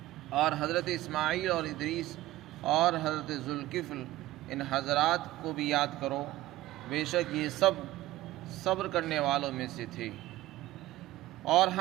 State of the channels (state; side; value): quieter; left; 16.3 dB